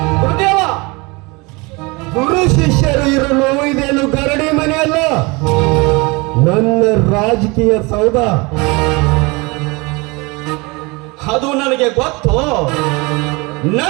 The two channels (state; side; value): quieter; left; 26.5 dB